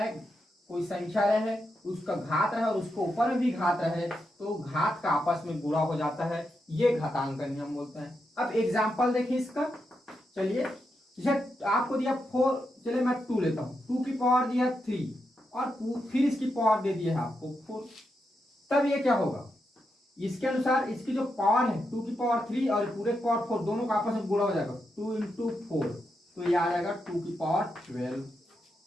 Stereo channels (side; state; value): both; normal; correlation 0.85